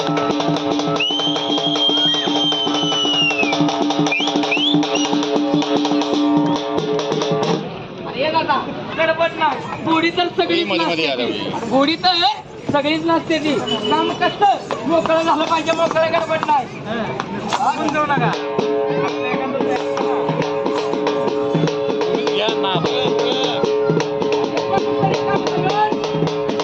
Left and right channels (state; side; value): identical; both; correlation 1.00